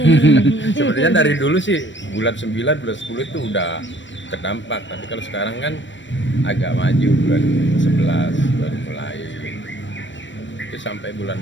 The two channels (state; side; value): late; right; 0.54 ms